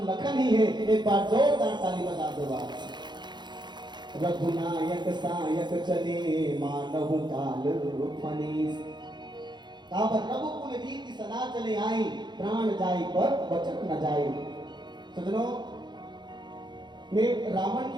लखन ही है। एक बार जोरदार ताली बजा दो। रघुनायक सायक चले मानव काल फनीस। रघुकुल रीति सदा चले आई, प्राण जाए पर वचन न जाए। सजनों, मैं रावण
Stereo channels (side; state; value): left; late; 0.21 ms